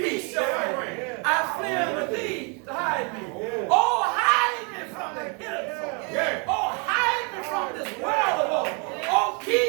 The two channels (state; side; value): quieter; left; 34.8 dB